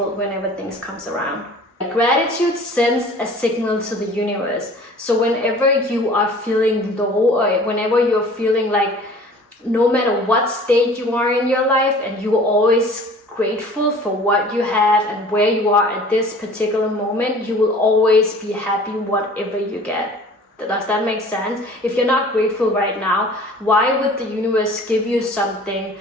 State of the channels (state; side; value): normal; both; correlation 0.47